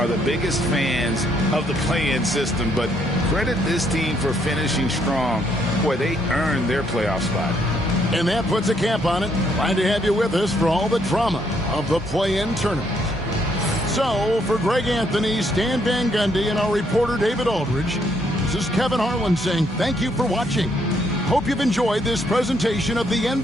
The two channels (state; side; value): normal; both; correlation 0.71